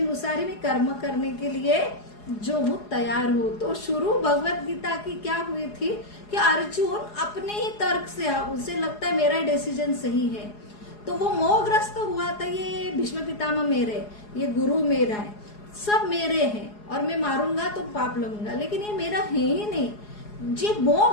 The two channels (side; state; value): right; late; 4.8 ms